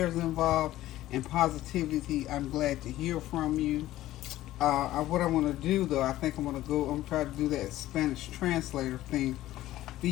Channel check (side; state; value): right; quieter; 15.0 dB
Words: involved and positivity, I'm glad to hear from you. What I want to do, though, I think I'm going to try to do that Spanish translator thing